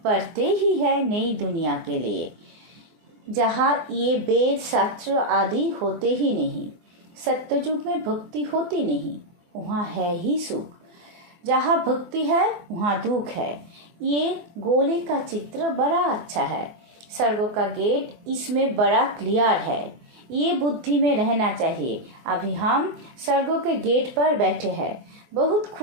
पढ़ते ही है नई दुनिया के लिए, जहाँ ये वेद शास्त्र आदि होते ही नहीं। सत्ययुग में भक्ति होती नहीं, वहाँ है ही सुख। जहाँ भक्ति है वहाँ दुख है। ये गोले का चित्र बड़ा अच्छा है। स्वर्ग का गेट इसमें बड़ा क्लियर है। ये बुद्धि में रहना चाहिए। अभी हम स्वर्गों के गेट पर बैठे हैं, बहुत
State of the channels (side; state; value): left; late; 24 ms